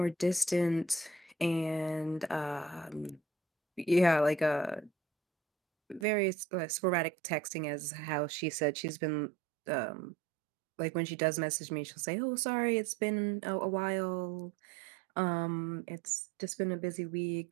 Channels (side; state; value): left; drops out; at 6.1 s